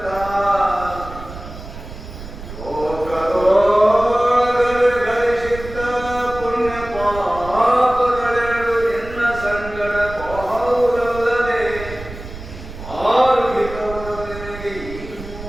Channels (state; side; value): noise; right; rumble, 13 dB below the sound